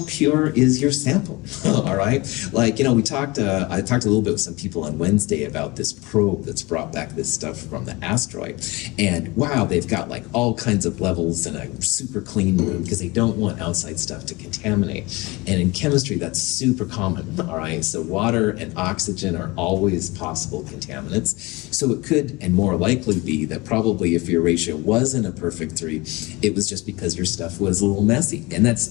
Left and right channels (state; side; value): quieter; right; 23.4 dB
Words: pure is your sample? All right, like I talked a little bit with some people on Wednesday about this probe that's brought back this stuff from the asteroid, and wow, they've got like all kinds of levels in a super clean room because they don't want outside stuff to contaminate. And in chemistry, that's super common. All right, so water and oxygen are always possible contaminants. So it could and more likely be that probably if your ratio wasn't a perfect 3, it was just because your stuff was a little messy, and that's